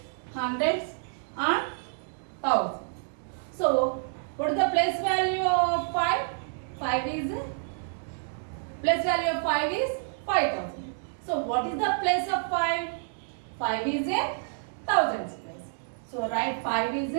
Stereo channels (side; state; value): left; silent; digital silence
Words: hundreds, and thousands. So what is the place value of 5? 5 is place value of 5 is 5000. So what is the place of 5? 5 is in thousands place. So write 5 is